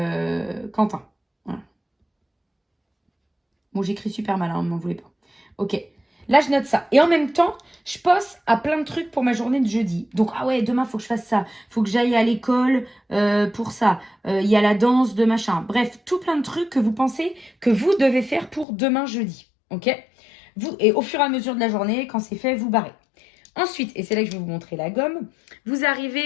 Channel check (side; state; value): right; drops out; at 18.7 s